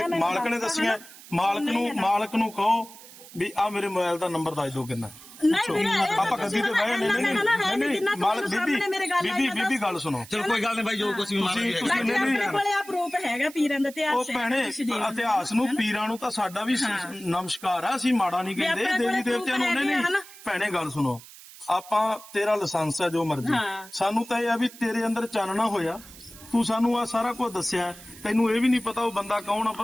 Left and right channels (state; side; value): noise; right; hiss, 18 dB below the sound